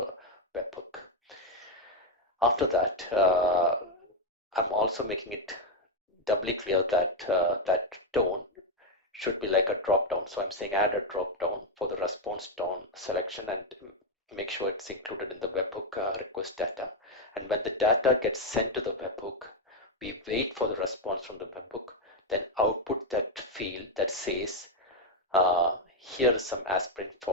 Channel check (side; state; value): both; normal; correlation 0.04